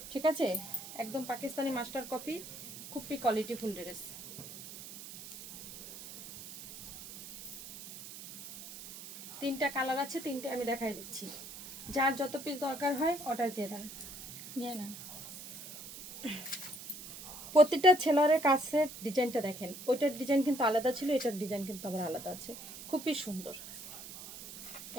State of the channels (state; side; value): noise; right; hiss, 12 dB below the sound